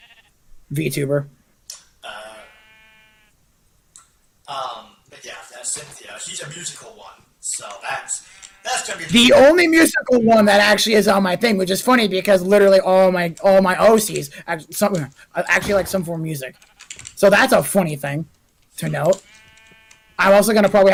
VTuber. But yeah, that's Cynthia. She's a musical one, so that's gonna be The only musical one that actually is on my thing, which is funny because literally all my OCs actually like some form of music. So that's a funny thing to note. I'm also gonna probably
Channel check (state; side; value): identical; both; correlation 1.00